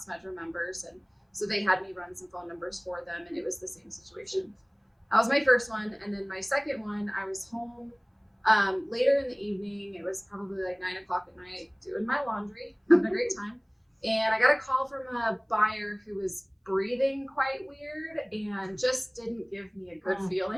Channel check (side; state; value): both; identical; correlation 1.00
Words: members, and so they had me run some phone numbers for them, and it was the same situation. That was my first one. And then my second one, I was home later in the evening. It was probably like 9 o'clock at night, doing my laundry, having a great time. And I got a call from a buyer who was breathing quite weird and just didn't give me a good